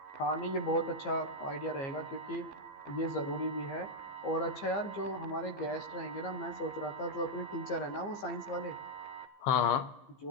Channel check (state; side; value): late; right; 15 ms